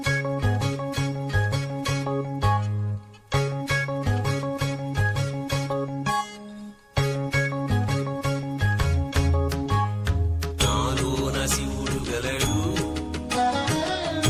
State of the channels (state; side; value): identical; both; correlation 1.00